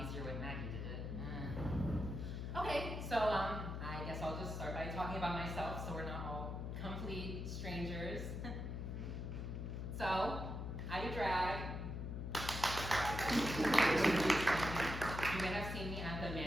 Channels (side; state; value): left; noise; hum, 4 dB below the sound